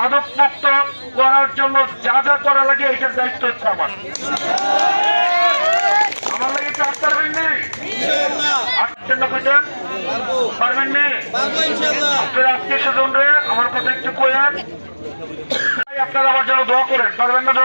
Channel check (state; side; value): inverted; both; correlation -1.00